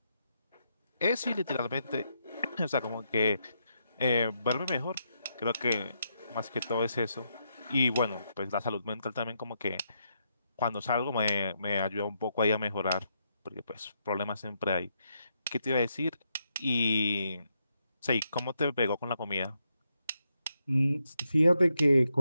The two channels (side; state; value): both; inverted; correlation -0.80